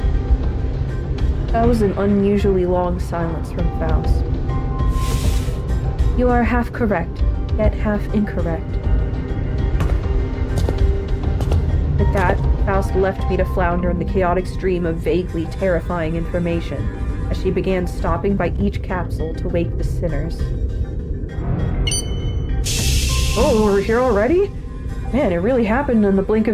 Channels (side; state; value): both; identical; correlation 1.00